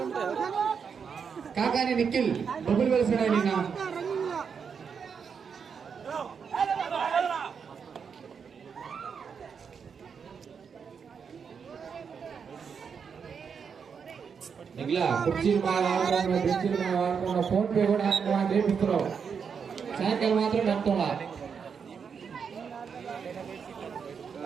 కాకాని నిఖిల్ బొబ్బులు వెలిసిన నిన్న ఇలా కుర్చీలు బాగా ఆడుతున్నా బెంచీలు బాగా ఆడుతున్నా ఫోన్ పే కూడా చేపిస్తున్నావు సాయంకాలం మాత్రం నడుతున్నా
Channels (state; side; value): quieter; left; 6.4 dB